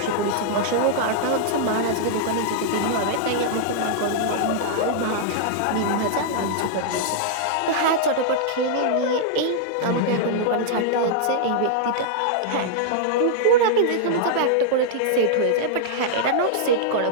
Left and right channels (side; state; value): both; different; correlation -0.01